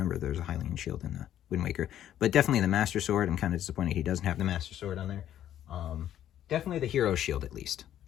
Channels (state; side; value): quieter; right; 11.3 dB